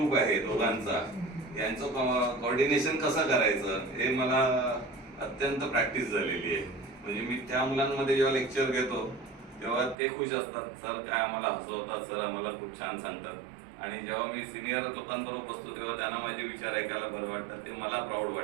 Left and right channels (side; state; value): left; drops out; at 10.0 s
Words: आहे दोघांचा, यांचं कोऑर्डिनेशन कसं करायचं हे मला अत्यंत प्रॅक्टिस झालेली आहे. म्हणजे मी त्या मुलांमध्ये जेव्हा लेक्चर घेतो तेव्हा ते खुश असतात, सर काय आम्हाला हसवतात, सर आम्हाला खूप छान सांगतात. आणि जेव्हा मी सिनियर लोकांबरोबर बसतो तेव्हा त्यांना माझे विचार ऐकायला बरं वाटतं. ते मला प्राऊड